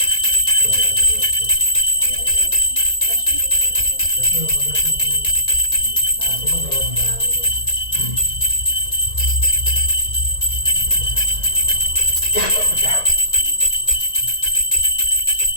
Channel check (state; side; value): late; right; 1.9 ms